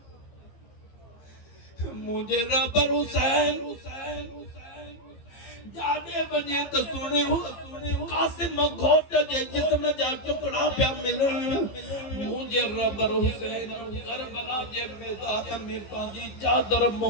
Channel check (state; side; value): late; right; 15 ms